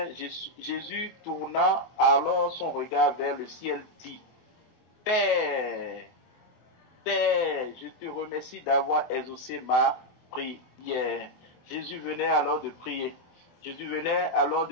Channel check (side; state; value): right; late; 24 ms